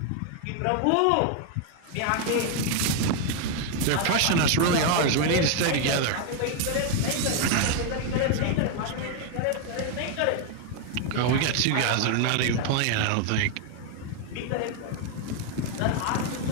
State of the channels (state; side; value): different; both; correlation 0.01